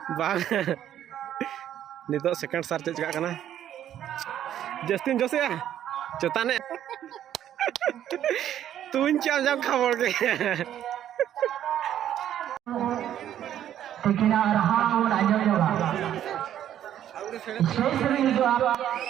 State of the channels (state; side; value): quieter; left; 10.9 dB